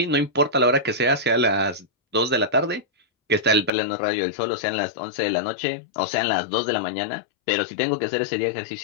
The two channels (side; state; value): right; drops out; at 3.7 s